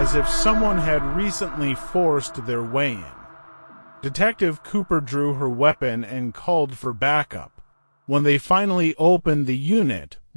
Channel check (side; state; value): both; inverted; correlation -1.00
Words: if someone had recently forced their way in. Detective Cooper drew her weapon and called for backup. When they finally opened the unit,